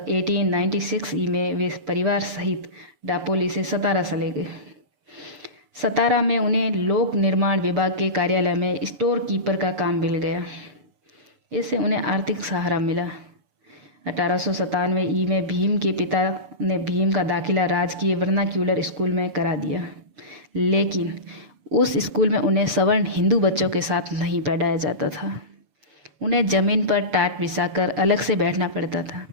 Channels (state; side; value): late; left; 6.9 ms